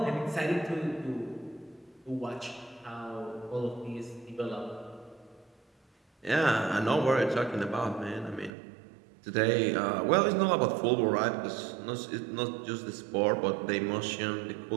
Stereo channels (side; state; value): left; drops out; at 8.5 s